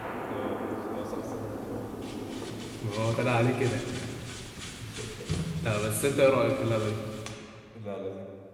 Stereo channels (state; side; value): identical; both; correlation 1.00